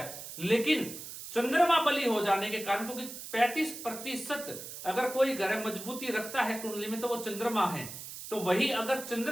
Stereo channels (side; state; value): right; noise; hiss, 11 dB below the sound